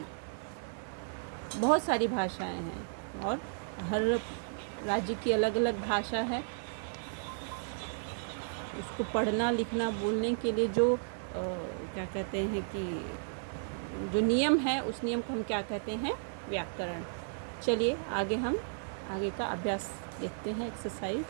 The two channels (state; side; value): silent; left; digital silence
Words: बहुत सारी भाषाएं हैं और हर राज्य की अलग अलग भाषा है। उसको पढ़ना, लिखना, बोलने के लिए जो क्या कहते हैं कि जो नियम है, उस नियम को हम क्या कहते हैं, व्याकरण। चलिए आगे का अभ्यास देखते हैं, एक्सरसाइज।